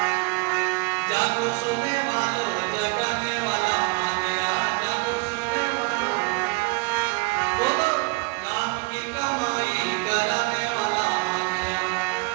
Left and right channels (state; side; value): quieter; left; 27.1 dB